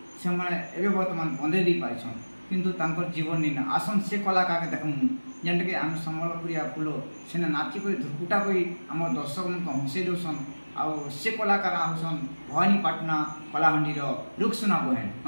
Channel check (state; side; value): inverted; both; correlation -1.00